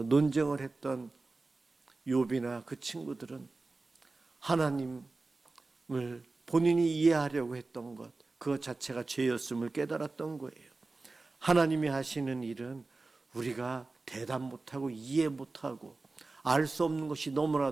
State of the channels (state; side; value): quieter; left; 3.5 dB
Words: 논쟁을 했던 욥이나 그 친구들은 하나님을 본인이 이해하려고 했던 것, 그것 자체가 죄였음을 깨달았던 거예요. 하나님이 하시는 일은 우리가 대답 못하고 이해 못하고 알 수 없는 것이